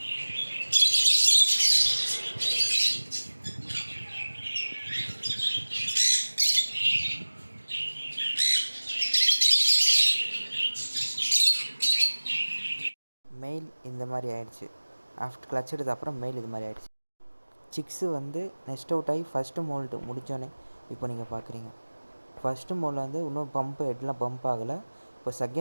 மெயில் இந்த மாதிரி ஆயிடுச்சு. ஆஃப்டர் கிளச் எடுத்த அப்புறம் மெயில் இது மாதிரி ஆயிடுச்சு. சிக்ஸு வந்து நெக்ஸ்ட் அவுட் ஆகி ஃபஸ்ட்டு மோல்ட்டு முடித்தோன்னே இப்போ நீங்கள் பார்க்குறீங்க. ஃபஸ்ட்டு மோல்ட் வந்து இன்னும் பம்ப்பு ஹெட்லாம் பம்ப் ஆகலை. இப்போ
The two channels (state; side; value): inverted; both; correlation -1.00